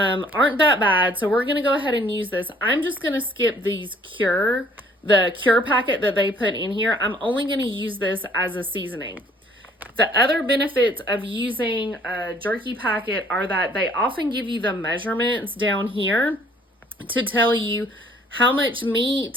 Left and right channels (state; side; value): normal; both; correlation 0.59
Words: that bad. So we're going to go ahead and use this. I'm just going to skip the cure packet that they put in here. I'm only going to use this as a seasoning. The other benefits of using a jerky packet are that they often give you the measurements down here to tell you how much